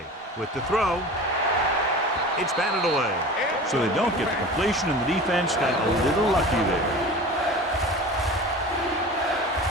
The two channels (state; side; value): normal; both; correlation 0.36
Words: With the throw, it's batted away. So they don't get the completion, and the defense got a little lucky there.